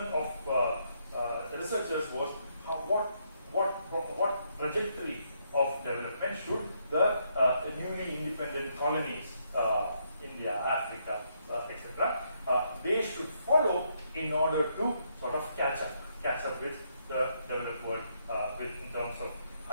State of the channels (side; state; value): both; inverted; correlation -0.75